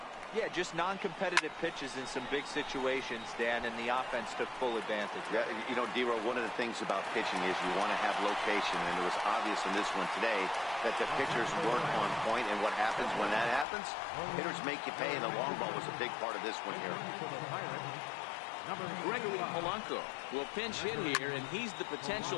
Yeah, just non-competitive pitches in some big situations, Dan, and the offense took full advantage. Yeah, you know, D-Row, one of the things about pitching is you want to have location, and it was obvious in this one today that the pitchers weren't on point, and what happens when that happens? Hitters make you pay, and the long ball was a big part of this one here. Gregory Polanco will pinch hit here, and he's the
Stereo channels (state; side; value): drops out; right; at 13.7 s